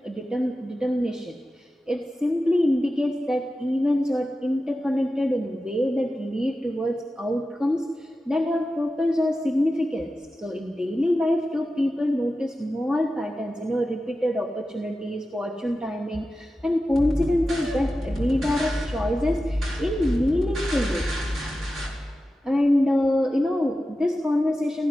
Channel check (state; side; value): normal; both; correlation 0.93